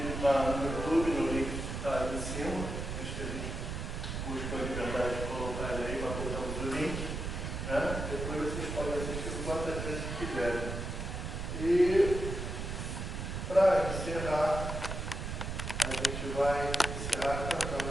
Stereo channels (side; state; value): right; noise; rumble, 4 dB below the sound